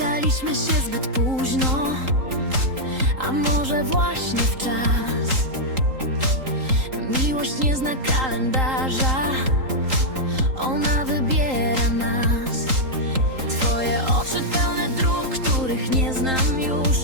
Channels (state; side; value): late; left; 3.8 ms